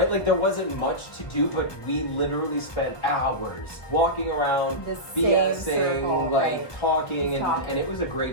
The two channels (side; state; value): right; late; 1.0 ms